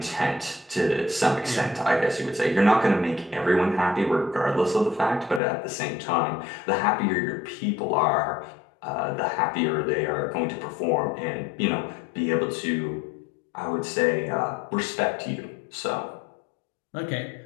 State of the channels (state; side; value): drops out; right; at 5.4 s